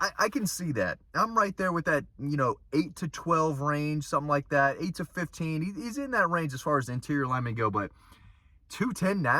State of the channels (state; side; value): identical; both; correlation 1.00